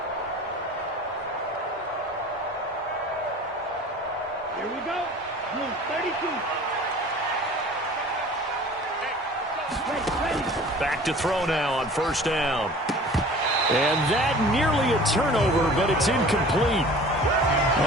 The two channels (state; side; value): normal; both; correlation 0.44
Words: Here we go. Blue 32. Ready. Back to throw now on 1st down. And that nearly a turnover, but it's incomplete.